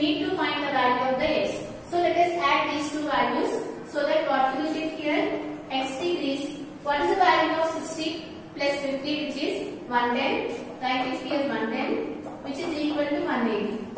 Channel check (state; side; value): identical; both; correlation 1.00